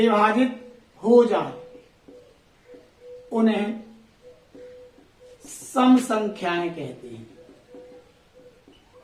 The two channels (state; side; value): identical; both; correlation 1.00